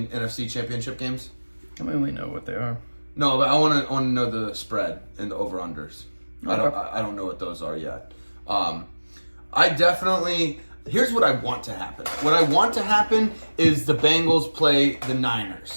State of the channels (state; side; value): inverted; both; correlation -1.00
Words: NFC championship games? I mean, we know what they are. No, but I want to know the spread and the over unders. Okay. I don't know what those are yet. I definitely. Here's what I want to happen. What I want to happen is the Bengals play the